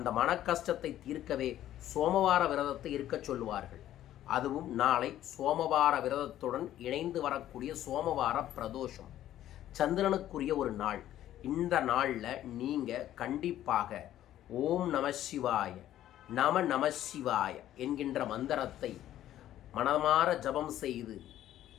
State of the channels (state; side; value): quieter; right; 12.5 dB